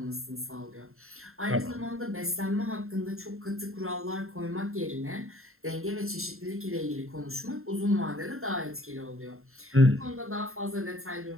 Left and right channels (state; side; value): late; left; 0.62 ms